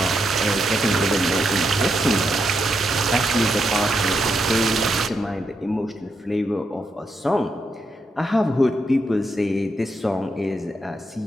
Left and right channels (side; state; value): both; normal; correlation 0.82